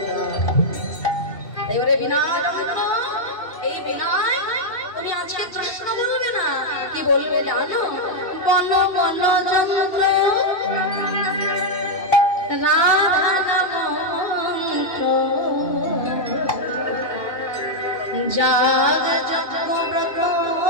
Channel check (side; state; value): right; late; 2.6 ms